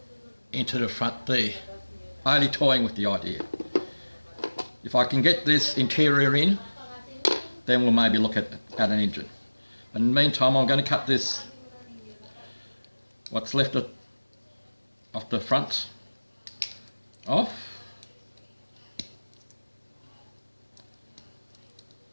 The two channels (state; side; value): inverted; both; correlation -1.00